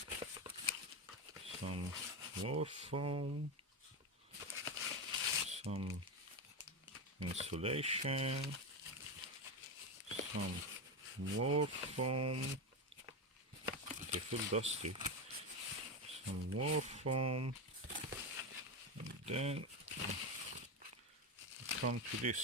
some more foam, some insulation, some more foam. They feel dusty. Some more foam, and then come to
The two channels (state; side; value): normal; both; correlation 0.14